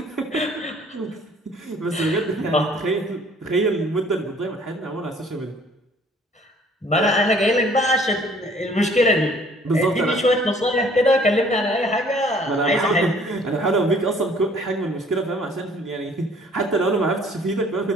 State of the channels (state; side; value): normal; both; correlation 0.56